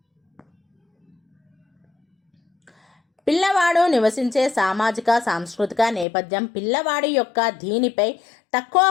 పిల్లవాడు నివసించే సామాజిక సాంస్కృతిక నేపథ్యం పిల్లవాడి యొక్క దీనిపై తక్కువ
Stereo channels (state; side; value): drops out; right; at 6.1 s